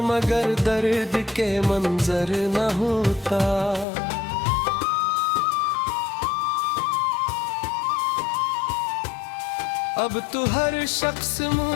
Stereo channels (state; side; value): drops out; right; at 3.9 s